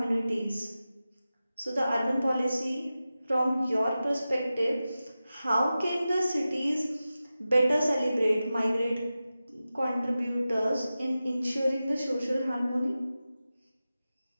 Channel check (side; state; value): both; inverted; correlation -0.94